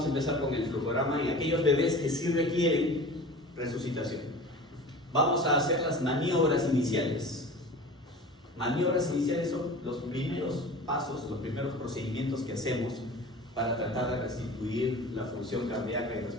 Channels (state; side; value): normal; both; correlation 0.38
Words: a empezar con el flujograma y aquellos bebés que sí requieren resucitación. Vamos a hacer las maniobras iniciales. Maniobras iniciales son los primeros pasos, los primeros procedimientos que hacemos para tratar de restituir la función cardíaca y